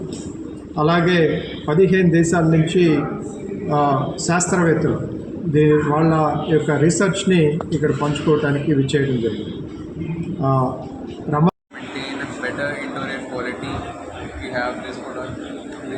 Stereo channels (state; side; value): identical; both; correlation 1.00